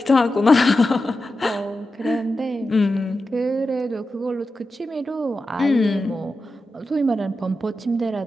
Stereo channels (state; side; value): normal; both; correlation 0.91